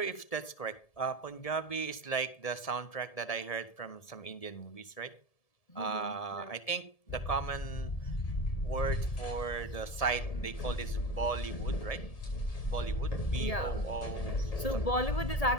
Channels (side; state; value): right; late; 1.7 ms